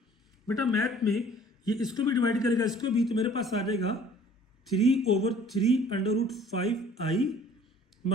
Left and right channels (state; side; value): normal; both; correlation 0.53